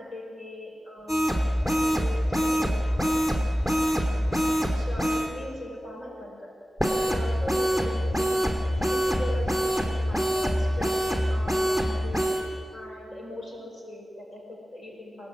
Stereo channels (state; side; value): normal; both; correlation 0.96